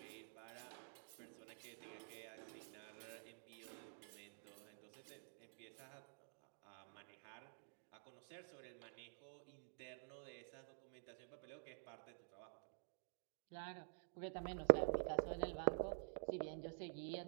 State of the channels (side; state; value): left; silent; digital silence